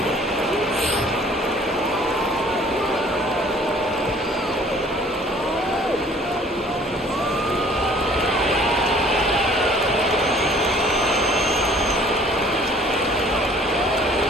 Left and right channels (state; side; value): normal; both; correlation 0.54